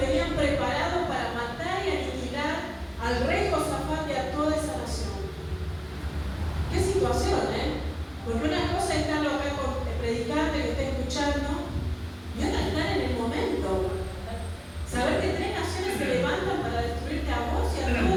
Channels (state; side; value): identical; both; correlation 1.00